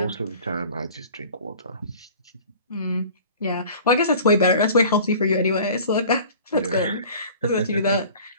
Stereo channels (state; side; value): inverted; both; correlation -0.45